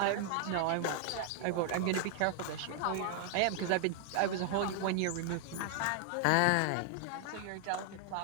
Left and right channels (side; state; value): both; different; correlation 0.00